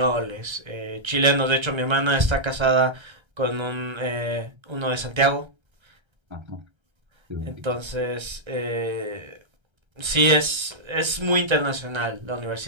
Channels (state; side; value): late; left; 1.3 ms